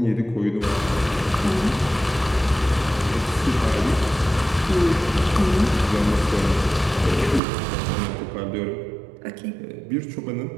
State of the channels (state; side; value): drops out; left; at 7.4 s